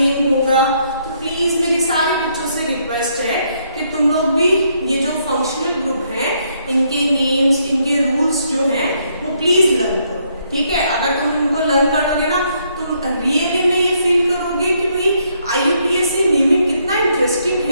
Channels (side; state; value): both; inverted; correlation -0.72